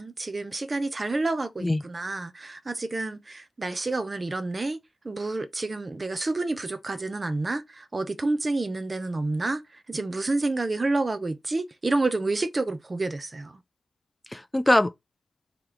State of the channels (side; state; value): both; normal; correlation 0.97